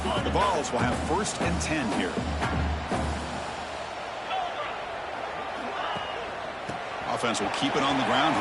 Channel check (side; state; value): both; identical; correlation 1.00